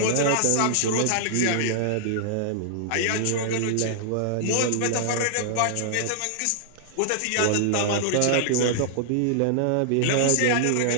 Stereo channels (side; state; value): both; different; correlation -0.01